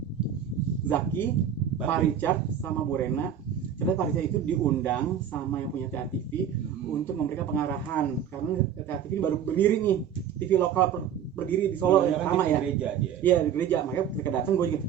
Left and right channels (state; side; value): quieter; left; 8.9 dB